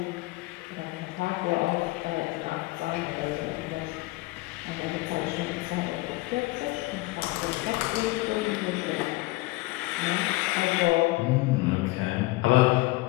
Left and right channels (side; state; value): right; quieter; 21.2 dB